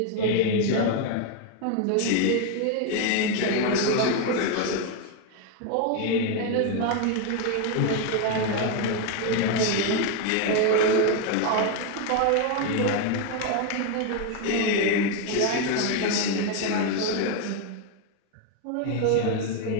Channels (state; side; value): different; both; correlation 0.01